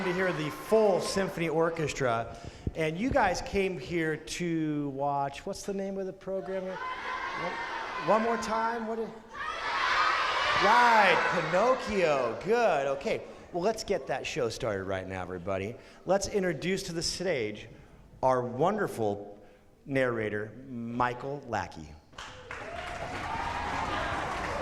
to hear the full symphony orchestra. And you guys came here to watch, what's the name of the program? One more time? Right, Pinocchio. Good, okay. Well, let's get that show started right now, everybody. Let's introduce to the stage our wonderful narrator, Michael Lackey.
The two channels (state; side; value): identical; both; correlation 1.00